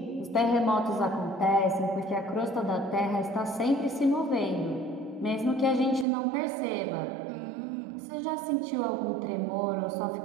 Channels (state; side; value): drops out; left; at 6.1 s